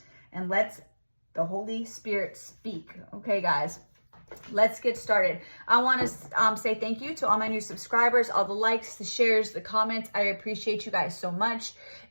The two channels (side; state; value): both; inverted; correlation -1.00